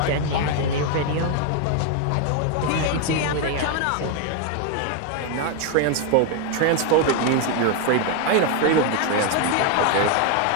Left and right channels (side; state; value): both; different; correlation 0.01